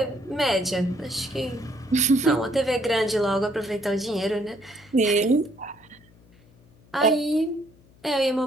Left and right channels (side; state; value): left; noise; hum, 28 dB below the sound